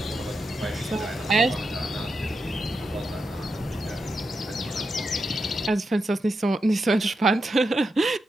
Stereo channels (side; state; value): both; normal; correlation 0.86